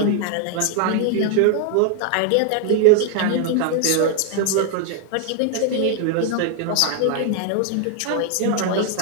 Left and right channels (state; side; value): different; both; correlation 0.00